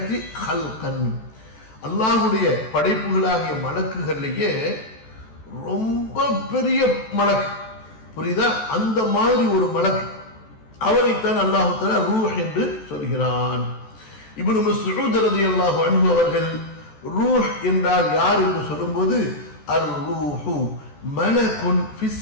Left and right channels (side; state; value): right; late; 14 ms